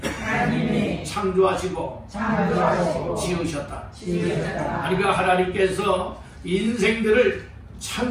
창조하시고 지으셨다. 그러니까 하나님께서 인생들을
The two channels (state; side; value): identical; both; correlation 1.00